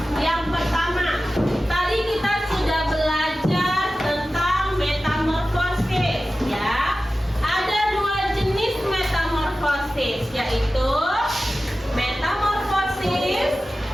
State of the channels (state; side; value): normal; both; correlation 0.95